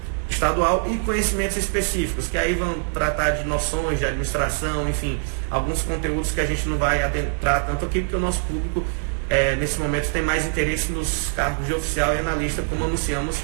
estadual e conhecimentos específicos, que aí vão tratar de noções de administração, enfim, alguns conteúdos que a gente não vai adentrar tanto aqui, porque o nosso público nesse momento tem mais interesse nos cargos de oficial e analista, como anunciamos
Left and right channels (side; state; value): left; silent; 60 dB below the other